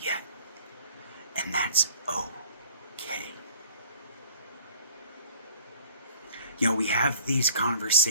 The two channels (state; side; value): inverted; both; correlation -0.52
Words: yet. And that's okay. You know, we have these